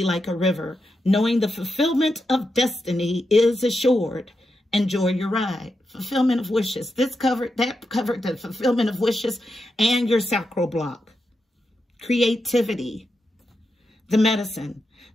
like a river, knowing the fulfillment of destiny is assured. Enjoy your ride. Fulfillment of wishes. That covered the fulfillment of wishes and your sacral block. Creativity. The medicine.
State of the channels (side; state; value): both; normal; correlation 0.87